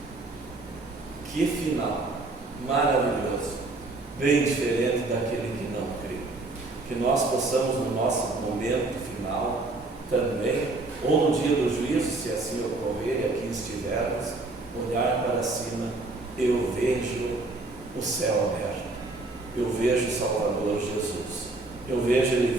Que final maravilhoso, bem diferente daquele que não crê. Que nós possamos no nosso momento final também, ou no dia do juízo, se assim ocorrer e aqui estivermos, olhar para cima. Eu vejo o céu aberto, eu vejo o Salvador Jesus, eu vejo Ele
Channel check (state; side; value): quieter; left; 3.2 dB